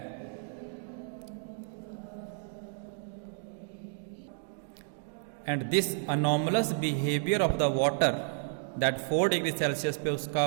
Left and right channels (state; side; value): silent; left; digital silence